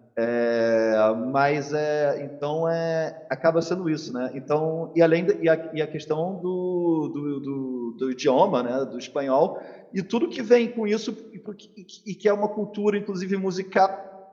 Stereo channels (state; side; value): identical; both; correlation 1.00